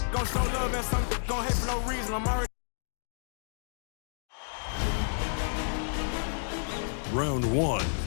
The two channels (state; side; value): silent; right; digital silence